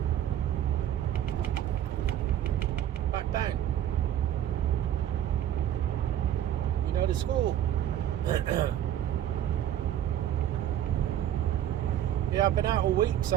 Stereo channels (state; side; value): quieter; left; 11.1 dB